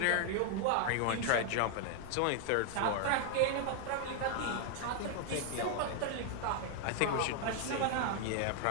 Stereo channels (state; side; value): different; both; correlation 0.00